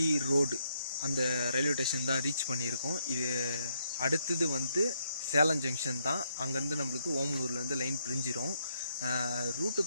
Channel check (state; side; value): inverted; both; correlation -0.76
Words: ரோடு அந்த ரயில்வே ஸ்டேஷன் தான் ரீச் பண்ணியிருக்கோம். இது அடுத்தது வந்து சேலம் ஜங்ஷன் தான். அங்கேருந்து நம்மளுக்கு ஓமலூர்லேருந்து லைன் பிரிஞ்சிடும். ரூட்டை